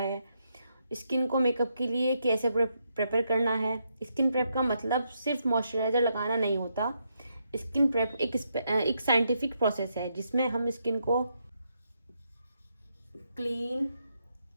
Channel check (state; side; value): inverted; both; correlation -0.79